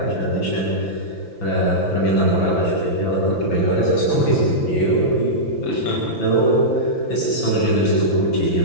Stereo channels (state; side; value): late; right; 5.9 ms